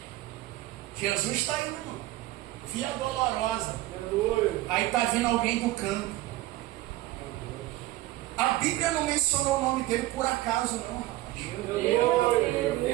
Jesus está indo. Via Dolorosa. Aí tá vindo alguém do campo. A Bíblia não mencionou o nome dele por acaso, não, rapaz.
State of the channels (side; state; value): left; quieter; 16.9 dB